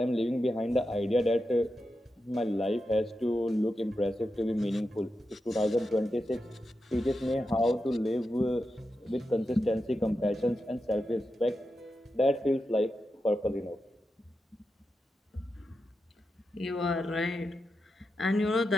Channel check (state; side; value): normal; both; correlation 0.89